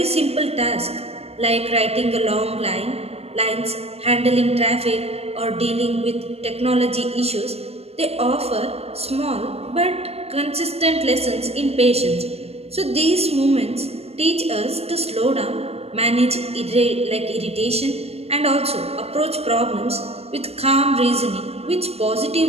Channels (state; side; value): late; left; 0.29 ms